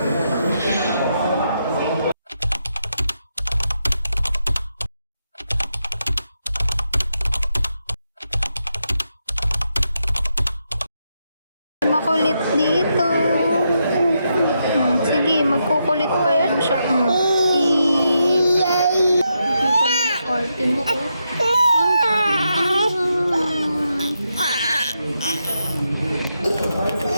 Makulit dito. Sige, magkukulit pa yan siya. Arte mo ko.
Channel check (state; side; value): inverted; both; correlation -0.83